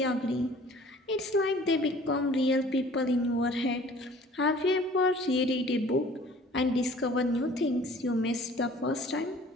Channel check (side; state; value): both; normal; correlation 0.50